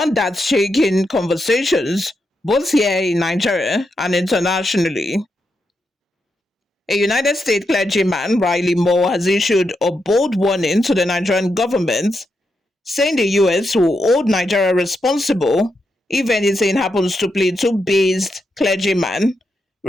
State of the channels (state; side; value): normal; both; correlation 0.84